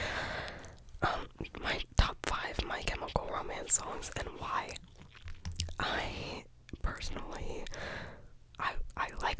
my top 5 My Chemical Romance songs and why. I personally I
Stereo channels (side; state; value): both; identical; correlation 1.00